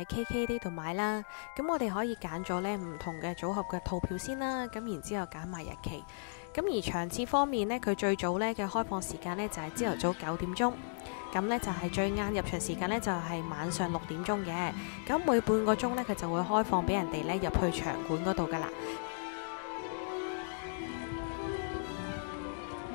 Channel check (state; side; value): silent; right; digital silence